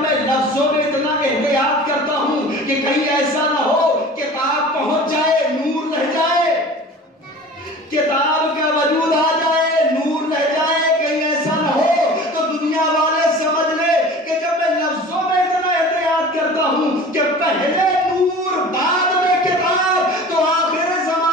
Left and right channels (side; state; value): both; normal; correlation 0.40